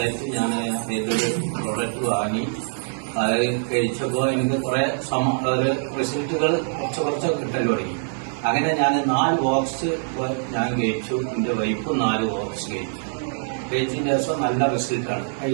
ഞാൻ ഇതിലൊരു പ്രോഡക്റ്റ് വാങ്ങി. അത് കഴിച്ചപ്പോൾ എനിക്ക് കുറെ റിസൾട്ടുകൾ കുറച്ച് കിട്ടൽ തുടങ്ങി. അങ്ങനെ ഞാൻ 4 ബോക്സ് ഞാൻ കഴിച്ചു. എൻ്റെ വൈഫും 4 ബോക്സ് കഴിച്ചു. കഴിച്ചതിന് ശേഷം നല്ല റിസൾട്ടാണ്.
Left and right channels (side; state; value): left; silent; 59 dB below the other